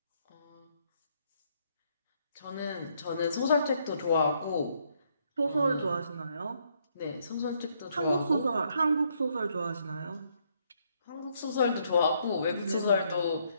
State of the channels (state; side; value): inverted; both; correlation -0.72